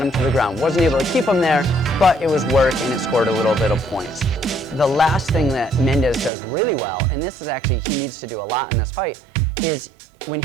him to the ground. Wasn't able to keep him there, but it was work and it scored a little bit of points. The last thing that Mendes does really well, and this is actually, he needs to do a lot in this fight, is when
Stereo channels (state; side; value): drops out; left; at 6.3 s